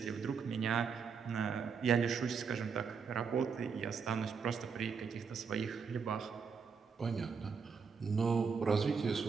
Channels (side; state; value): left; quieter; 5.9 dB